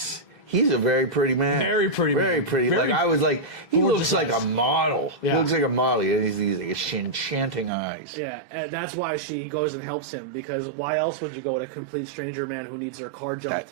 He's a very pretty man. Very pretty man. Very pretty. Like I was like, he looks like a model. Yeah. He looks like a model. He has these like, enchanting eyes. Yeah, and that's why she goes and helps him, because why else would you go with a complete stranger man who needs their car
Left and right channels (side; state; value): left; drops out; at 7.7 s